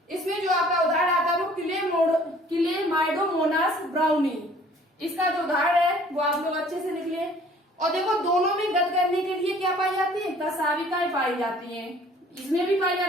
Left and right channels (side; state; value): both; normal; correlation 0.54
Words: इसमें जो आपका उदाहरण आता है वो क्लेमाइडोमोनास ब्राउनी। इसका जो उदाहरण है वो आप लोग अच्छे से लिख लें। और देखो दोनों में गत करने के लिए क्या पाई जाती है, कसाविकाएं पाई जाती हैं। इसमें भी पाई